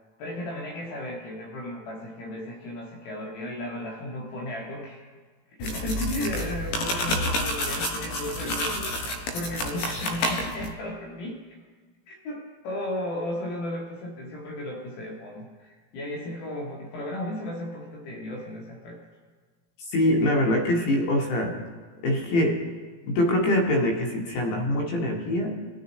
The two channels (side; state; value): right; late; 18 ms